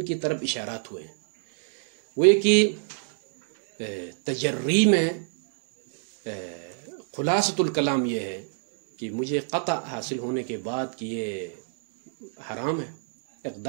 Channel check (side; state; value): left; silent; 61 dB below the other